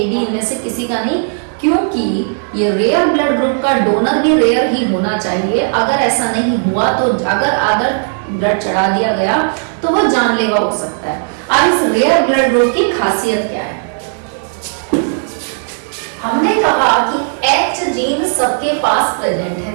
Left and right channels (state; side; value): silent; left; digital silence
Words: इनमें से किसी का नहीं, क्योंकि ये रेयर ब्लड ग्रुप का डोनर भी रेयर ही होना चाहिए। अगर ऐसा नहीं हुआ तो अगर ब्लड चढ़ा दिया गया तो वो जानलेवा हो सकता है। अब इस रेयर ब्लड ग्रुप की खासियत क्या है, हमने कहा कि H जीन सबके पास प्रेजेंट